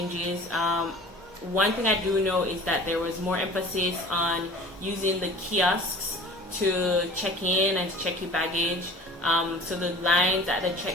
One thing I do know is that there was more emphasis on using the kiosks to check in and to check your baggage. So the lines at the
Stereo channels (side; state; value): both; normal; correlation 0.43